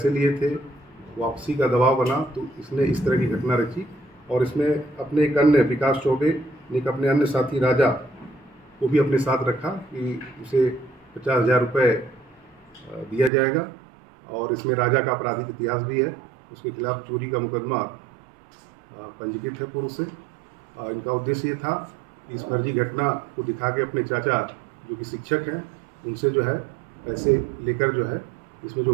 लिए थे वापसी का दबाव बना, तो इसने इस तरह की घटना रची। और इसमें अपने एक अन्य विकास चौबे ने एक अपने अन्य साथी राजा को भी अपने साथ रखा कि उसे 50,000 रुपये दिया जाएगा। और इसमें राजा का आपराधिक इतिहास भी है, उसके खिलाफ चोरी का मुकदमा पंजीकृत है पूर्व से। इनका उद्देश्य ये था कि इस फर्जी घटना को दिखा के अपने चाचा जो कि शिक्षक हैं उनसे जो है पैसे लेकर जो है इसमें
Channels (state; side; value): drops out; left; at 13.3 s